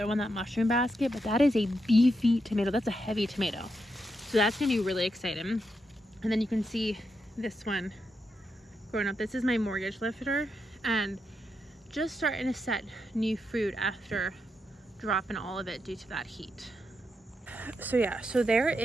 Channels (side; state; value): both; normal; correlation 0.83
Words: one, that mushroom basket, but that is a beefy tomato. That's a heavy tomato. So that's gonna be really exciting. And then you can see this one growing up. This is my mortgage lifter, and just starting to set new fruit after dropping all of it due to that heat. So yeah, so there